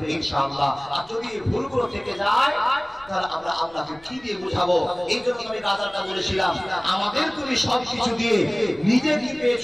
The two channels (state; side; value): noise; left; rumble, 26 dB below the sound